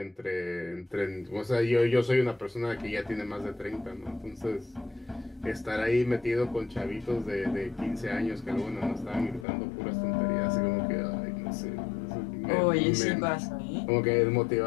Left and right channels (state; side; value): drops out; right; at 9.5 s